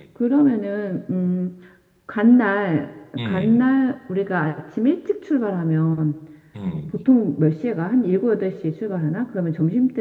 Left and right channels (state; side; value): identical; both; correlation 1.00